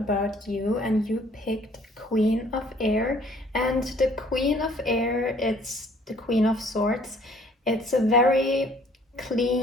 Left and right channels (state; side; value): normal; both; correlation 0.58